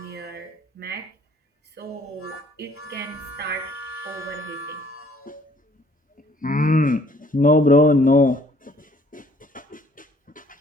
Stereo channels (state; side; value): normal; both; correlation 0.60